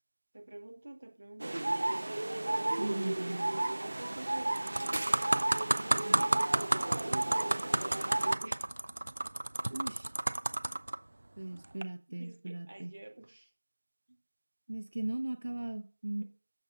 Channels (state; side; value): inverted; both; correlation -1.00